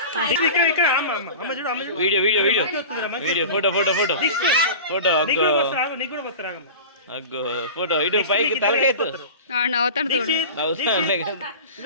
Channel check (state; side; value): inverted; both; correlation -0.35